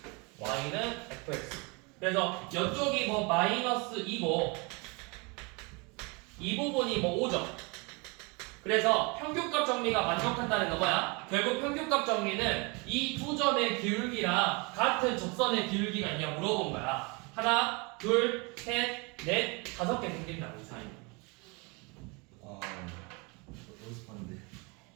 y는 fx. 그래서 이쪽이 뭐 마이너스 2고 이 부분이 뭐 5죠. 그래서 평균값 정리가 만족한다는 건 뭐야? 결국 평균값 정리는 이 두 점의 기울기랑 같은 접선의 기울기가 있냐 물어본 거야. 하나, 둘, 셋, 넷, 5개 생긴다고 이 사이. 연습하는데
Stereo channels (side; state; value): left; quieter; 29.5 dB